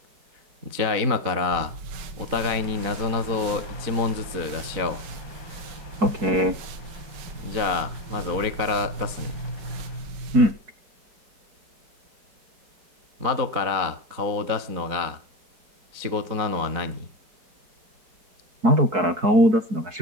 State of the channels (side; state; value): left; late; 4.0 ms